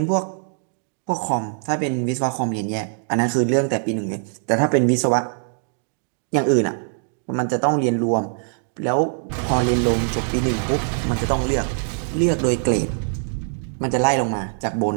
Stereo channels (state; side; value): silent; left; digital silence